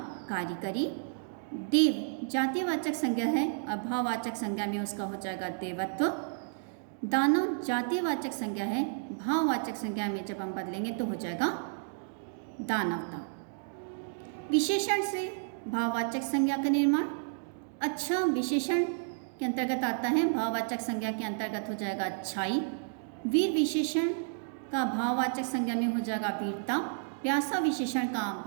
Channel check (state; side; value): silent; left; digital silence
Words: कारीगरी। देव जातिवाचक संज्ञा है और भाववाचक संज्ञा में उसका हो जाएगा देवत्व। दानव जातिवाचक संज्ञा है, भाववाचक संज्ञा में जब हम बदलेंगे तो हो जाएगा दानवता। विशेषण से भाववाचक संज्ञा का निर्माण। अच्छा विशेषण के अंतर्गत आता है, भाववाचक संज्ञा के अंतर्गत हो जाएगा अच्छाई। वीर विशेषण का भाववाचक संज्ञा में हो जाएगा वीरता। प्यासा विशेषण का